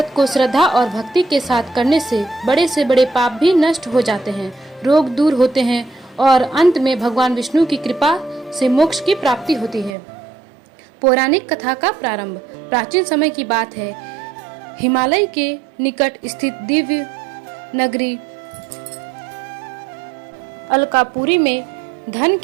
को श्रद्धा और भक्ति के साथ करने से बड़े पाप भी नष्ट हो जाते हैं, रोग दूर होते हैं और अंत में भगवान विष्णु की कृपा से मोक्ष की प्राप्ति होती है। पौराणिक कथा का प्रारंभ प्राचीन समय की बात है। हिमालय के निकट स्थित दिव्य नगरी अलकापुरी में धन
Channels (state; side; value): drops out; left; at 10.0 s